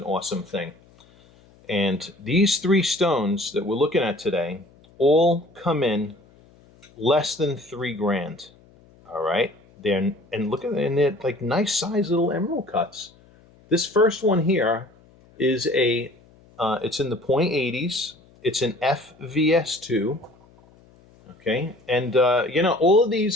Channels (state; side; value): noise; left; hum, 28 dB below the sound